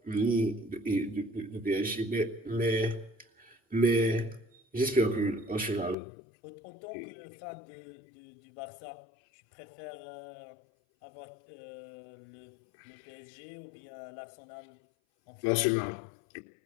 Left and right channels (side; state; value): right; drops out; at 6.0 s